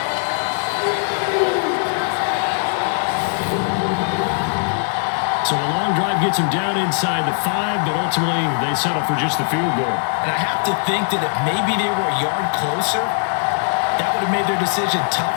So a long drive gets them down inside the 5, but ultimately they settle for just the field goal. And I have to think that if maybe they were a yard closer, that would have made their decision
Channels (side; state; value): right; silent; digital silence